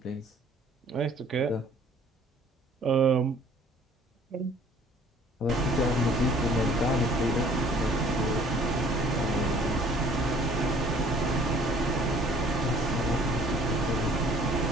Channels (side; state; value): both; normal; correlation 0.55